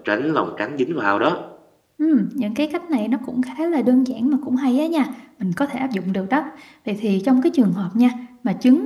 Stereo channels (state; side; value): identical; both; correlation 1.00